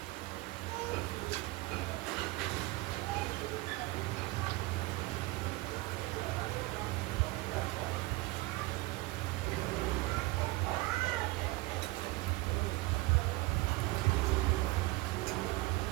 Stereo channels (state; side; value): quieter; left; 21.1 dB